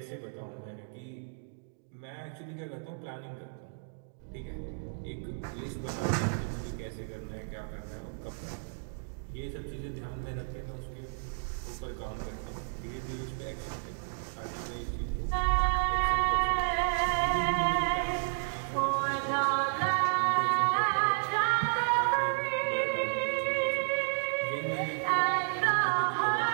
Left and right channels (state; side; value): silent; left; digital silence